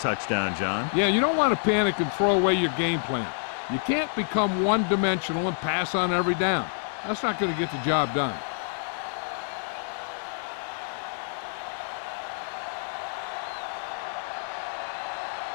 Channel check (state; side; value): silent; right; digital silence